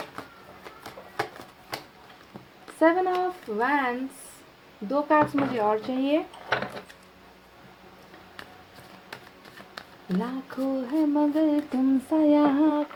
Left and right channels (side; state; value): both; identical; correlation 1.00